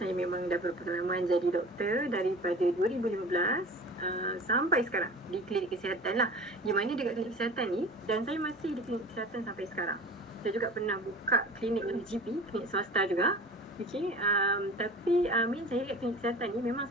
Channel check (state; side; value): normal; both; correlation 0.39